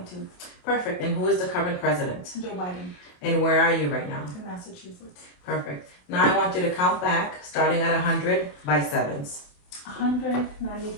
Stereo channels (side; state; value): right; late; 28 ms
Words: Perfect. And who is the current president? Joe Biden. And where are you right now? In Massachusetts. Perfect. Now I want you to count back, starting at 100 by sevens. 100,